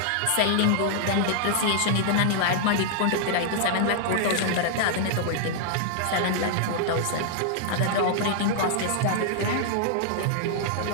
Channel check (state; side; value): different; both; correlation -0.01